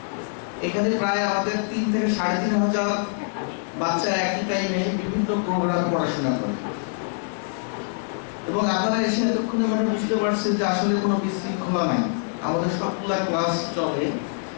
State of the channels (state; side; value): silent; right; digital silence